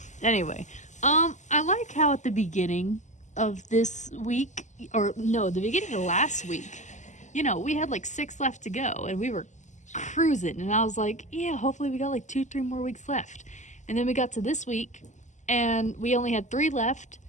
Anyway, I like how at the beginning of this week, or no, the beginning of last week, you know, we had like 6 left to go and we were cruising. And I was like, yeah, hopefully we got like 2-3 more weeks left. And then we got to this week and we only had 3 left,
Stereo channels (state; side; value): late; right; 0.34 ms